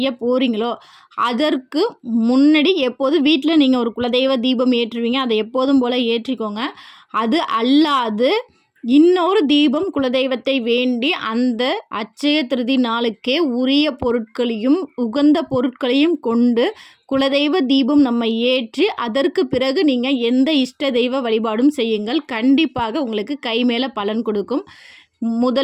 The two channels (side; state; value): both; identical; correlation 1.00